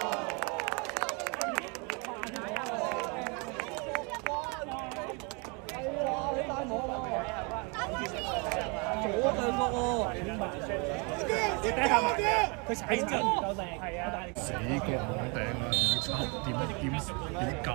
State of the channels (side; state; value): left; quieter; 32.2 dB